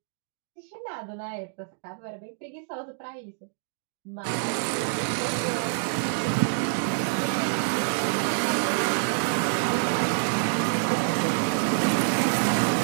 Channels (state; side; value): silent; left; digital silence